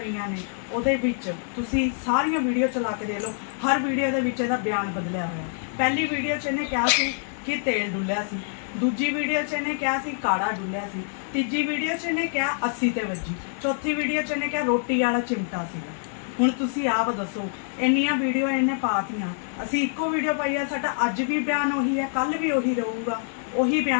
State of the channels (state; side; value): silent; right; digital silence